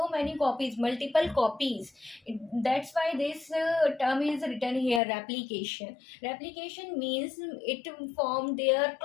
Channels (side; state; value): right; drops out; at 5.0 s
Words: many copies, multiple copies. That's why this term is written here, replication. Replication means it form their